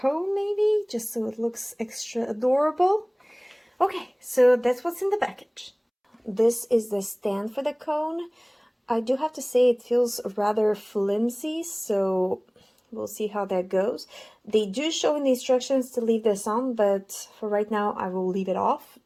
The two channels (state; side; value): identical; both; correlation 1.00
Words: maybe, just so it looks extra adorable. Okay, so that's what's in the package. This is the stand for the cone. I do have to say it feels rather flimsy, so we'll see how that goes. They do show in the instructions to leave this on, but for right now I will leave it off.